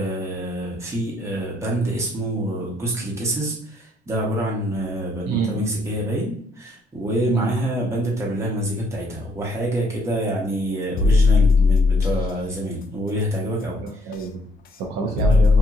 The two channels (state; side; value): normal; both; correlation 0.67